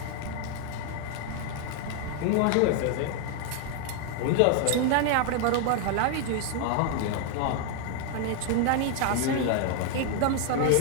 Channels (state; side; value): different; both; correlation 0.00